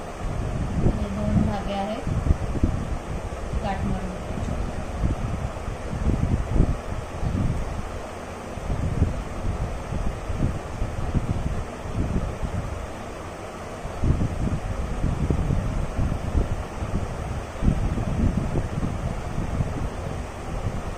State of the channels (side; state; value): both; identical; correlation 1.00